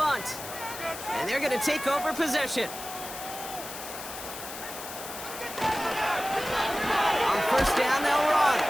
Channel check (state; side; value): noise; left; hiss, 10 dB below the sound